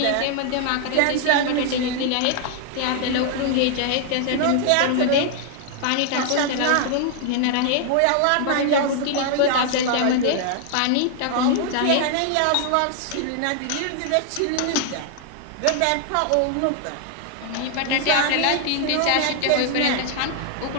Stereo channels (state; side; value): different; both; correlation 0.00